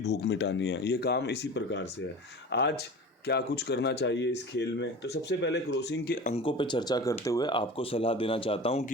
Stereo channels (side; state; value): both; normal; correlation 0.35